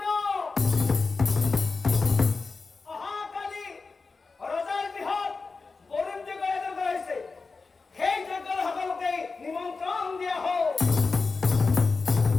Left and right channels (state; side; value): quieter; right; 4.2 dB